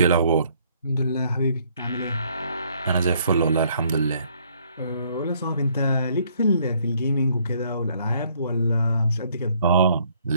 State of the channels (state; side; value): inverted; both; correlation -0.65